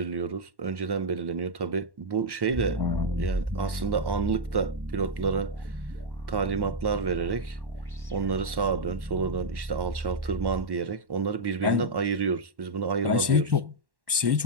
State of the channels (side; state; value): left; late; 1.1 ms